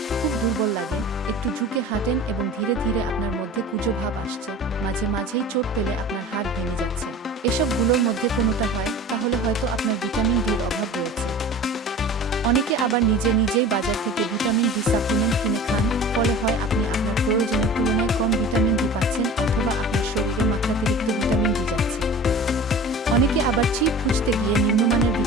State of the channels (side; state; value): both; normal; correlation 0.38